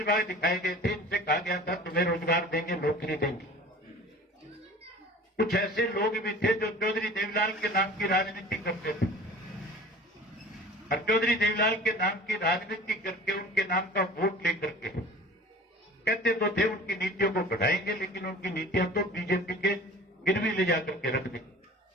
दिखाए गए थे। इनसे कहा गया था तुम्हें रोजगार देंगे, नौकरी देंगे। कुछ ऐसे लोग भी थे जो चौधरी देवीलाल के नाम की राजनीति करते थे और चौधरी देवीलाल के नाम की राजनीति करके उनके नाम का वोट लेकर के कहते तो थे उनकी नीतियों को बढ़ाएंगे, लेकिन उनकी नीतियां तो बीजेपी के गिरवी ले जाकर के रख दी।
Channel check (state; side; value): normal; both; correlation 0.42